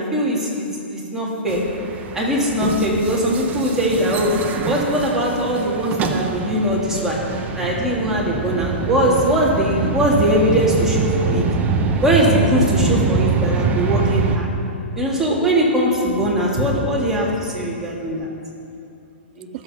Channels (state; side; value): normal; both; correlation -0.09